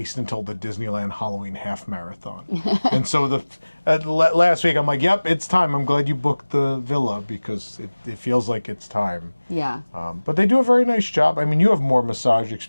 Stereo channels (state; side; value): inverted; both; correlation -1.00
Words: until the Disneyland Halloween half marathon. And so last week, I'm like, yep, it's time. I'm glad you booked the villa because it feels like it's time. Yeah. But they do a very nice job. I mean, you have more massage